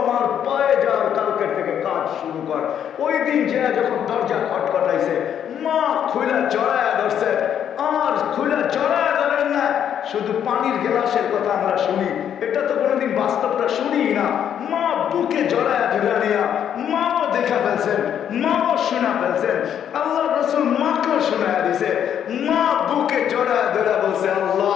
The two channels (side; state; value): right; quieter; 9.3 dB